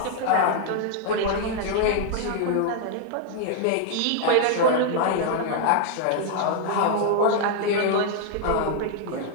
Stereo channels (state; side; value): different; both; correlation 0.00